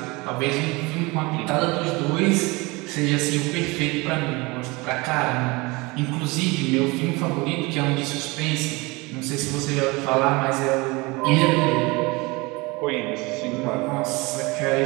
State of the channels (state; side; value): quieter; left; 24.7 dB